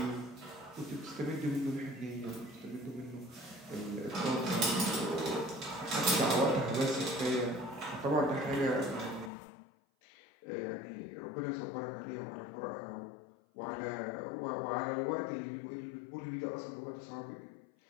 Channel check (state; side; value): drops out; right; at 9.3 s